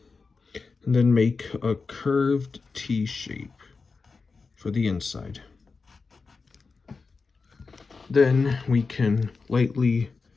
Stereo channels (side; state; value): right; quieter; 4.5 dB